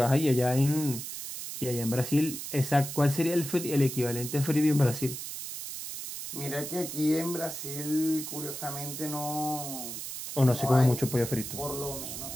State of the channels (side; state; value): right; noise; hiss, 8 dB below the sound